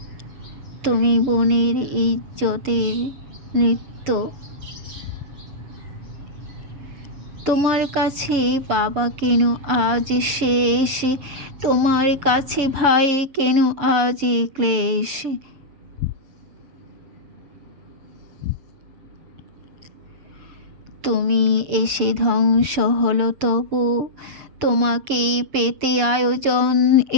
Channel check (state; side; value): late; left; 7.3 ms